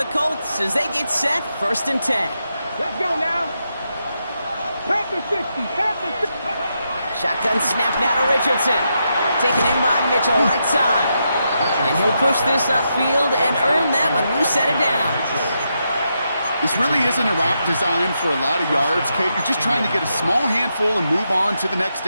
Colts as they get set, 1st and 10. Let's go now. Panther 60, Panther 60. Shotgun snap now to Richardson. Taken in by Mitchell, right side. And he'll push this upfield and earn them a new set of downs. This really isn't a route designed for a lot of yards, Kate. You're just trying to get a small handful and move on to the next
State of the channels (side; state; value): both; inverted; correlation -0.83